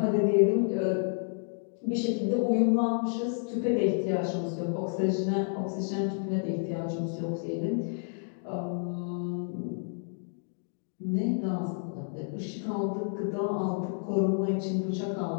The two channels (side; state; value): right; silent; 58 dB below the other